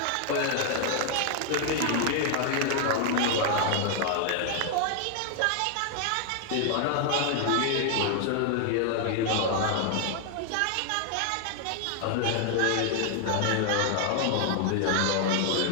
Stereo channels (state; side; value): different; both; correlation 0.00